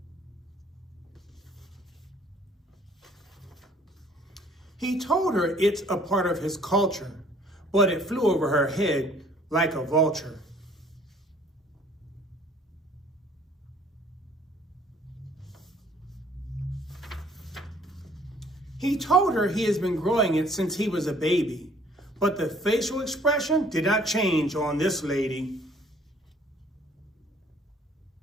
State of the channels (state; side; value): normal; both; correlation 0.57